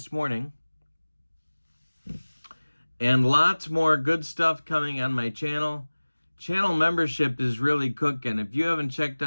morning. And lots more good stuff coming on my channel. Channel membership is really cooking. If you haven't checked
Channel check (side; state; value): both; inverted; correlation -1.00